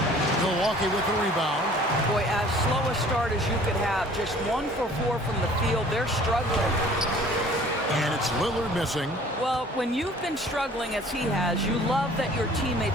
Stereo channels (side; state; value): both; normal; correlation 0.51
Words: Milwaukee with the rebound. Boy, as slow a start as you could have. Just 1 for 4 from the field. They're struggling. And it's Lillard missing. Well, when you've been struggling as he has, you love that your